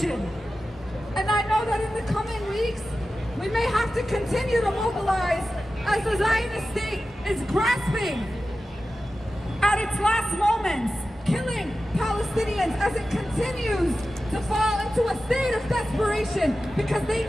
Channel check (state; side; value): normal; both; correlation 0.94